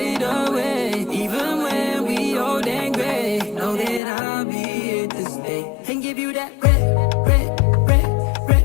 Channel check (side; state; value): right; drops out; at 4.0 s